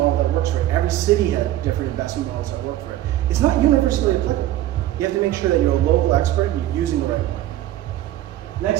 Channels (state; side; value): quieter; left; 14.0 dB